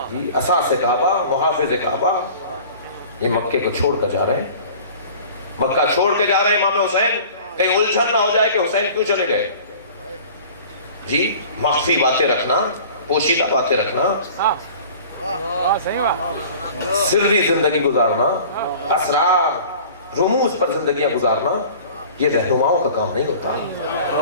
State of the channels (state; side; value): inverted; both; correlation -0.44